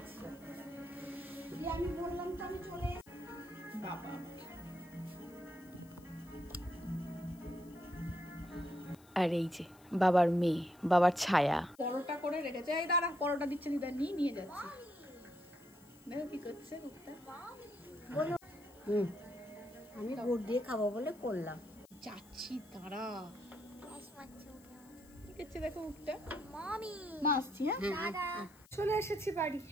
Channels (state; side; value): noise; left; hiss, 26 dB below the sound